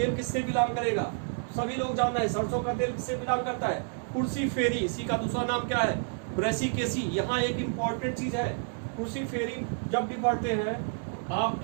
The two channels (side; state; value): left; silent; 58 dB below the other